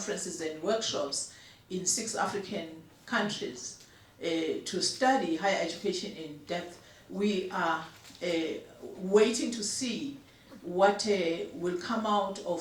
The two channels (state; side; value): identical; both; correlation 1.00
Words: and workshops in 6 African countries to study higher education in depth. We are waiting to see what will come out